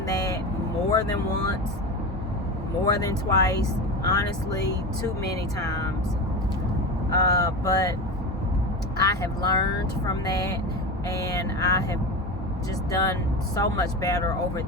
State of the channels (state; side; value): normal; both; correlation 0.24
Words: that more than once, more than twice, honestly, too many times. But I have learned from that, and I have just done so much better over